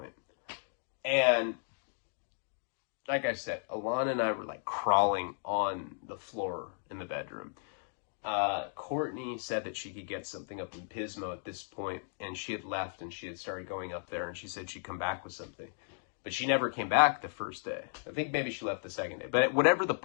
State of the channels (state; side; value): silent; right; digital silence